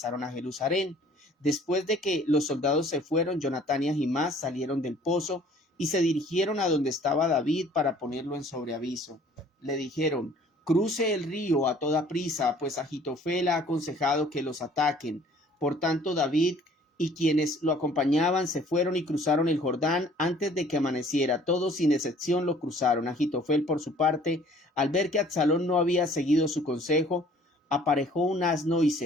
a Jerusalén. Después de que los soldados se fueron, Jonatán y Ahimás salieron del pozo y se dirigieron a donde estaba David para ponerlo en sobreaviso. Le dijeron: cruce el río a toda prisa, pues Ahitofel ha aconsejado que los ataquen. Por tanto, David y quienes lo acompañaban se fueron y cruzaron el Jordán antes de que amaneciera. Todos sin excepción lo cruzaron. Ahitofel, por su parte, al ver que Absalón no había seguido su consejo, aparejó un asno y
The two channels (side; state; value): both; normal; correlation 0.54